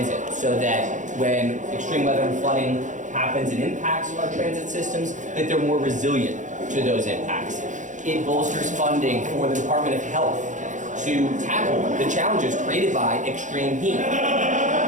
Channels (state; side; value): late; left; 0.36 ms